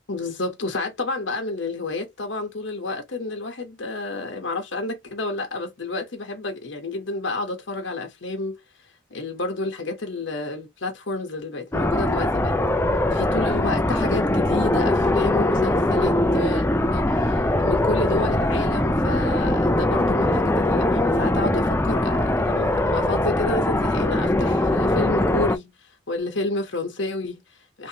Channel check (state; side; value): normal; both; correlation 0.62